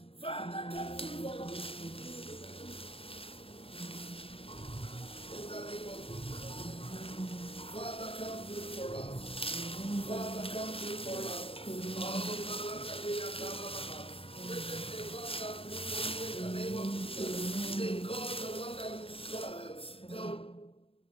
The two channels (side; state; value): right; late; 0.27 ms